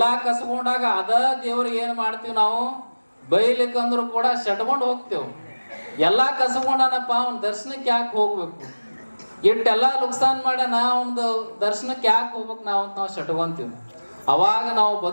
ಕಸ್ಕೊಂಡಾಗ ಅದ ದೇವ್ರಿಗೆ ಏನ್ ಮಾಡ್ತೀವಿ ನಾವು, ಬೈಲಿಕ್ಕಂದ್ರು ಕೂಡ ಶಟ್ಕೊಂಡು ಹೋಗ್ತೇವೆ. ಎಲ್ಲಾ ಕಸ್ಕೊಂಡನಪ್ಪ, ಅವ್ನ ದರ್ಶನಕ್ಕೆ ಯಾಕೆ ಹೋಗ್ಬೇಕು, ಇಟ್ಟೆಲ್ಲಾ ನುಕ್ಸಾನ್ ಮಾಡ್ಯಾನ, ಅವ್ನದು ದರ್ಶನಕ್ಕೆ ಯಾಕೆ ಹೋಗ್ಬೇಕು ನಾವು ಅಂತ ನಾವು ಶಟ್ಕೊಂತೀವಿ. ಅವಾಗ ನಾವು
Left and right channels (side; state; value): both; inverted; correlation -1.00